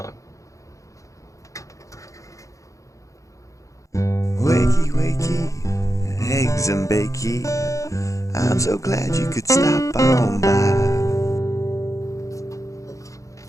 Wakey, wakey, eggs and bakey. I'm so glad you could stop on by.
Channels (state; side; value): late; right; 0.15 ms